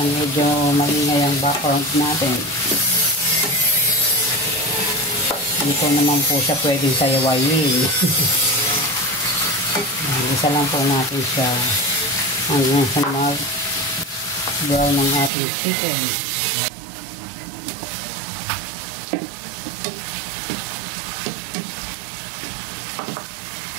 medyo maingay ang background natin. Dito naman po siya pwedeng sayawayin. Isa lang po natin siya hanggang sa mag-brown ng ating chicken.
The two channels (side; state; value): left; drops out; at 15.3 s